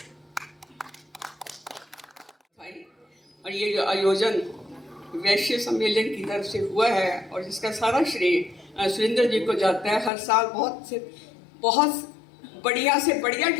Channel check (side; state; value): right; drops out; at 10.1 s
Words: और ये जो आयोजन वैश्य सम्मेलन की तरफ से हुआ है और जिसका सारा श्रेय सुरेंद्र जी को जाता है। हर साल बहुत बढ़िया से बढ़िया